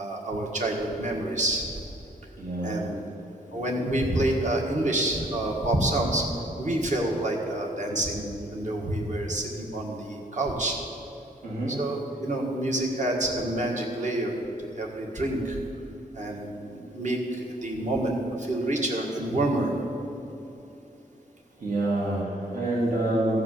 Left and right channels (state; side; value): normal; both; correlation 0.61